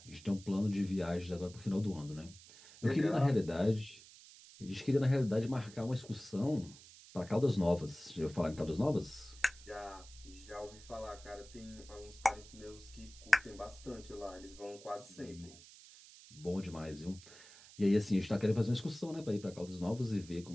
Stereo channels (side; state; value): right; noise; hiss, 19 dB below the sound